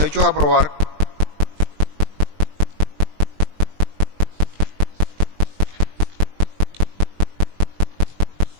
hechos a probar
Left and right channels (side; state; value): left; late; 20 ms